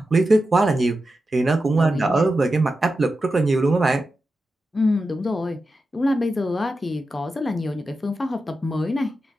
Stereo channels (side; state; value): both; normal; correlation 0.90